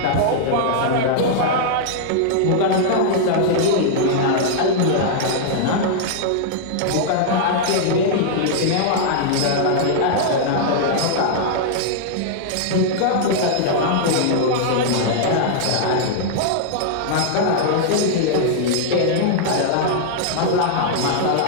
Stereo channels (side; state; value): both; different; correlation -0.01